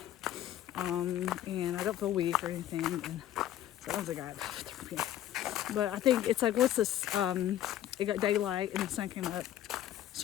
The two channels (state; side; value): quieter; right; 12.0 dB